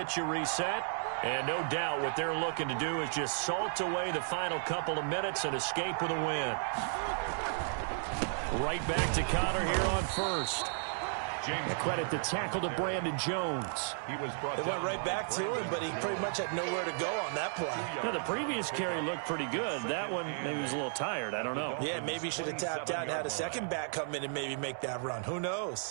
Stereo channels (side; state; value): left; silent; 55 dB below the other